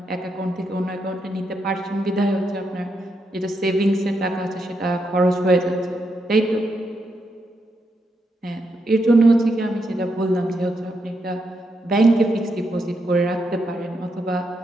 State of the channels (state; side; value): normal; both; correlation 0.82